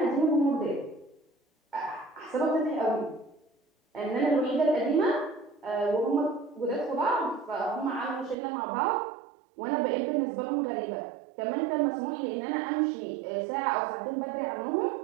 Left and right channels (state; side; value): drops out; left; at 8.3 s